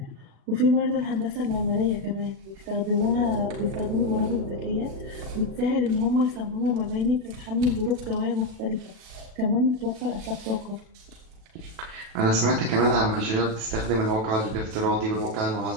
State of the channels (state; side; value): late; left; 37 ms